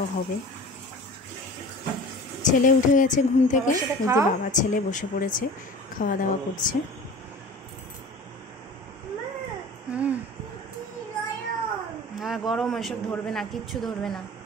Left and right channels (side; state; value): both; normal; correlation 0.39